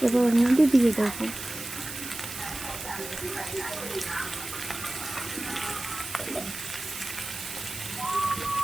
এবার ওর মধ্যে দিয়ে দেবো।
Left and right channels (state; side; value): noise; right; hiss, 9 dB below the sound